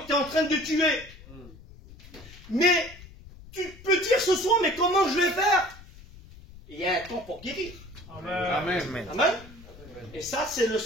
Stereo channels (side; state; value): left; noise; rumble, 19 dB below the sound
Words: tu es en train de tuer. Mais tu peux dire ce soir, mais comment je vais faire? Il y a un temps pour guérir. Amen. Amen. Amen. Et ça, c'est le